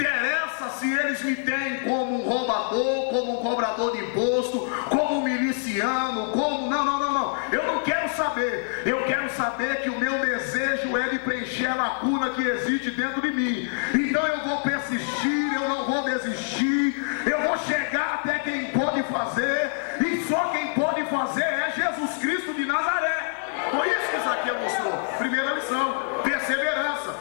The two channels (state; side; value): silent; right; 61 dB below the other